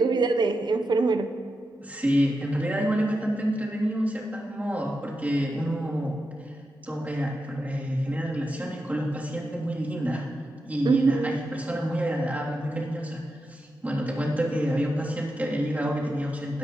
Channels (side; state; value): both; normal; correlation 0.88